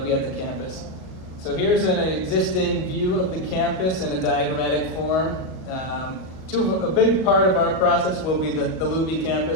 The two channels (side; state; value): right; late; 38 ms